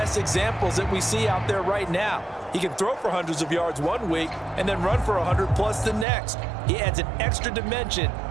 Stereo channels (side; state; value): left; drops out; at 6.1 s